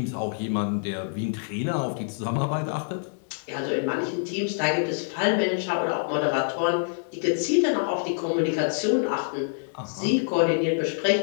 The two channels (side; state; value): right; silent; digital silence